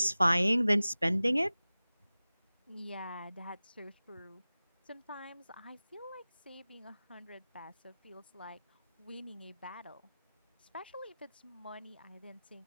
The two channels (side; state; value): both; inverted; correlation -0.97